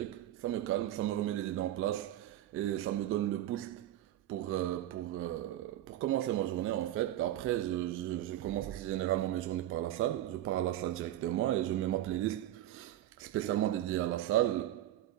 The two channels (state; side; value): quieter; left; 13.2 dB